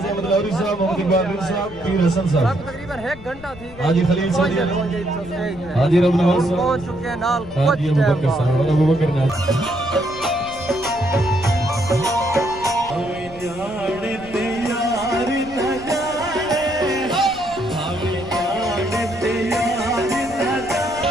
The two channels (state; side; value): noise; left; rumble, 18 dB below the sound